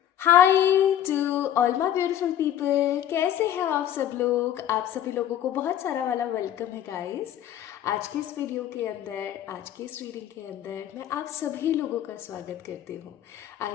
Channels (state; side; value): quieter; right; 11.1 dB